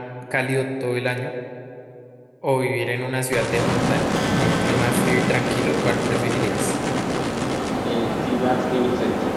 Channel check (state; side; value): identical; both; correlation 1.00